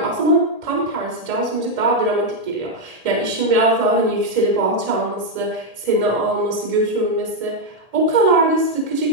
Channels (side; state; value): left; late; 1.8 ms